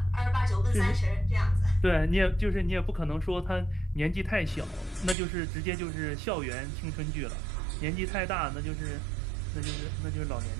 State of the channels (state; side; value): drops out; left; at 5.2 s